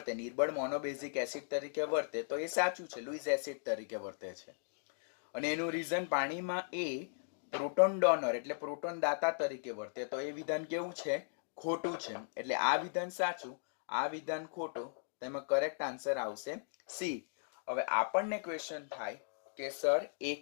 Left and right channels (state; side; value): silent; right; digital silence